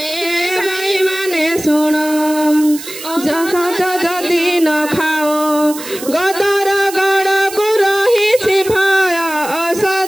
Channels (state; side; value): noise; right; hiss, 12 dB below the sound